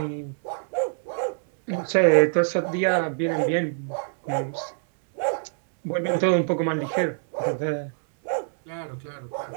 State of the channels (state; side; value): silent; left; 62 dB below the other